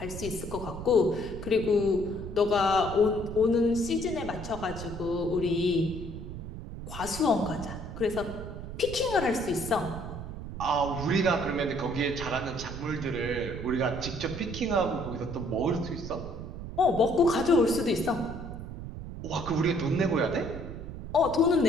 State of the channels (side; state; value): right; noise; rumble, 9 dB below the sound